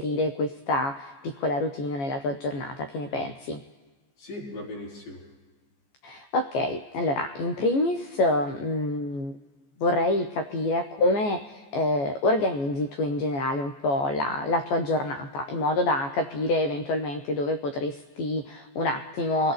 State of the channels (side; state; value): right; late; 14 ms